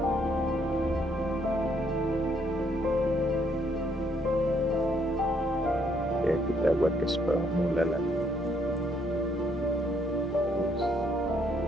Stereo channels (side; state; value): both; normal; correlation 0.70